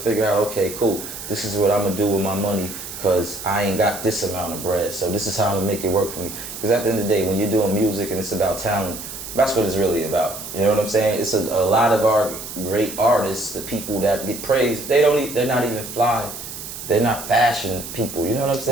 out, okay, cool, this is what I'm gonna do with my money, because I ain't got this amount of bread, so this is how I'm gonna make it work for me. Because at the end of the day, when you're doing music and it's about talent, that's what it's really about. You know what I'm saying? It's a lot of our great artists, the people that get praised, they're not even fly. They're not fashion people, you know what I'm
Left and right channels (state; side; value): noise; right; hiss, 10 dB below the sound